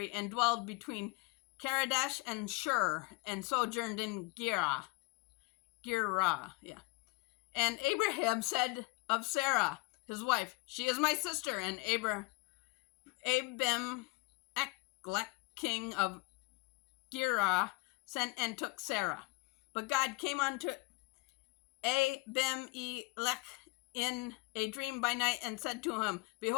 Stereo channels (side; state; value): right; quieter; 26.7 dB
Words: and dwelled between Kadesh and Shur, and sojourned in Gerar. And Abraham said of Sarah, his wife, She is my sister. And Abimelech, king of Gerar, sent and took Sarah. But God came unto Abimelech in a dream by night, and said to him,